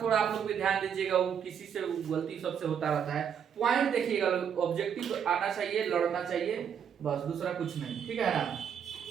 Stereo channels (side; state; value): left; quieter; 8.0 dB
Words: थोड़ा आप लोग भी ध्यान दीजिएगा, वो किसी से गलती सबसे होता रहता है। पॉइंट देखिएगा, ऑब्जेक्टिव आना चाहिए, लड़ना चाहिए, बस, दूसरा कुछ नहीं, ठीक है